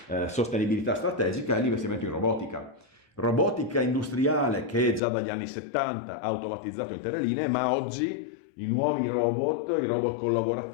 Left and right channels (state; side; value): drops out; right; at 5.0 s